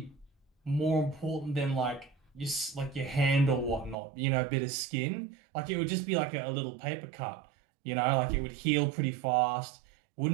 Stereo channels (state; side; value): drops out; left; at 4.0 s